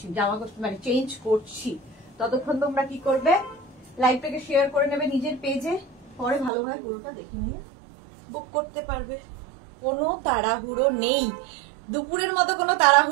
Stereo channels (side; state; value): left; drops out; at 6.5 s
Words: জামা মানে চেঞ্জ করছি, ততক্ষণ তোমরা কি করবে, লাইভটাকে শেয়ার করে নেবে নিজের পেজে, পরে ভালোভাবে পুরোটা দেখে নিয়ে বুক করতে পারবে। কোনো তাড়াহুড়ো নেই, দুপুরের মতো কোনো